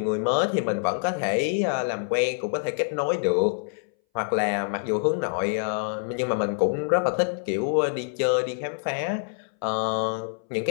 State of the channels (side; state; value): right; silent; 60 dB below the other